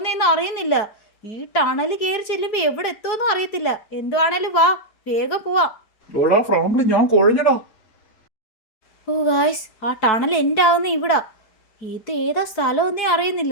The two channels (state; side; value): late; right; 4.6 ms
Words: അറിയുന്നില്ല. ഈ ടണൽ കയറി ചെല്ലുമ്പോൾ എവിടെ എത്തുമെന്നും അറിയത്തില്ല. എന്തുവാണേലും വാ, വേഗം പോവാം. എടാ ഫ്രാങ്ക്ലിൻ, ഞാൻ കുഴഞ്ഞടാ. ഓ ഗായ്സ്, ആ ടണൽ എൻ്റെ ആവുന്ന ഇവിടാ. ഇത് ഏതാ സ്ഥലമൊന്നേ